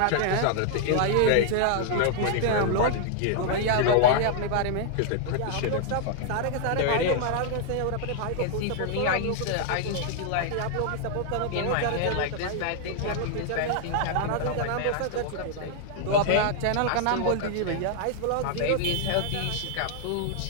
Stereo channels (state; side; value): different; both; correlation 0.00